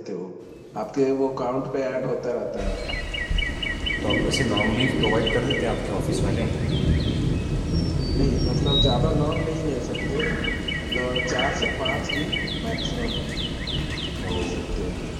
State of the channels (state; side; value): identical; both; correlation 1.00